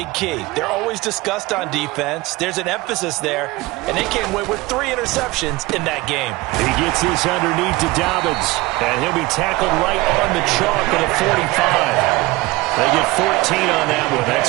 key. They're always discussed on defense. There's an emphasis there, and they came away with 3 interceptions in that game. He gets this underneath to Dobbins, and he'll be tackled right on the chalk at a 45. They get 14 on that one.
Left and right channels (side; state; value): left; quieter; 21.0 dB